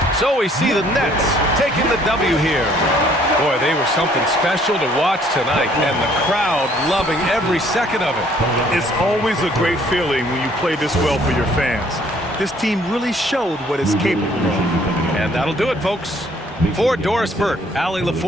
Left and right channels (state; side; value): normal; both; correlation 0.61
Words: So we see the Nets taking the W here. Boy, they were something special to watch tonight, and the crowd loving every second of it. It's always a great feeling when you play this well for your fans. This team really showed what it's capable of. And that'll do it, folks. For Doris Burke, Allie